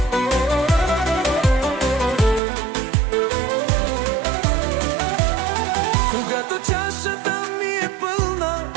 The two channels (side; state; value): left; drops out; at 2.4 s